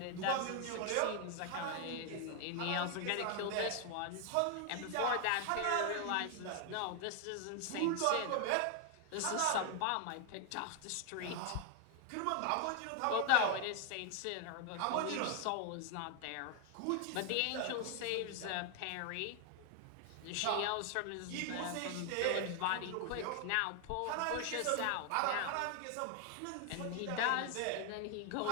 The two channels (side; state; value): both; different; correlation 0.00